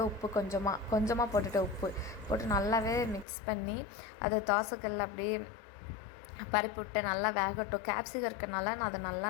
உப்பு கொஞ்சமாக போட்டுவிட்டேன். உப்பு போட்டு நல்லாவே மிக்ஸ் பண்ணி அதை தோசைக்கல்ல அப்படியே பரப்பி விட்டு நல்லா வேகட்டும். கேப்சிகம் இருக்கிறனால நான் அதை நல்லா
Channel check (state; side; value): drops out; right; at 3.2 s